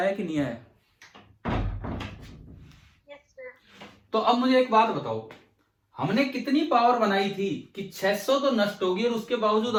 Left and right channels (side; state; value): both; identical; correlation 1.00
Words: कि नहीं आया? Yes, sir. तो अब मुझे एक बात बताओ, हमने कितनी पावर बनाई थी कि 600 तो नष्ट होगी और उसके बावजूद